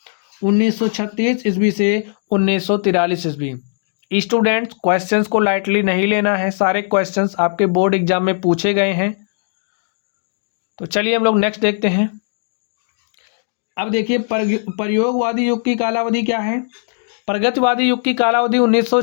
1936 ईस्वी से 1943 ईस्वी। स्टूडेंट्स, क्वेश्चंस को लाइटली नहीं लेना है, सारे क्वेश्चंस आपके बोर्ड एग्जाम में पूछे गए हैं। तो चलिए हम लोग नेक्स्ट देखते हैं। अब देखिए, प्रयोगवादी युग की कालावधि क्या है? प्रगतिवादी युग की कालावधि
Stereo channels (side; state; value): right; silent; digital silence